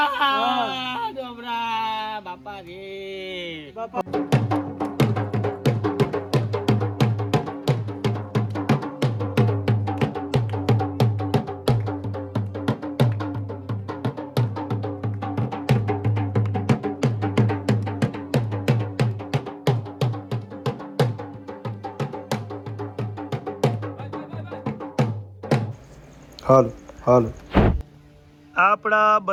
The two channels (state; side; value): identical; both; correlation 1.00